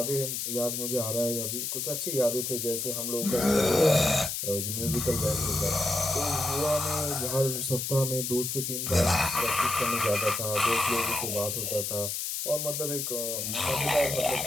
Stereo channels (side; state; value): left; noise; hiss, 3 dB below the sound